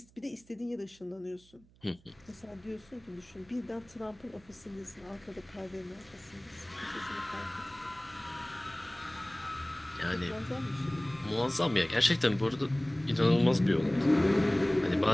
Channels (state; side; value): noise; right; hum, 28 dB below the sound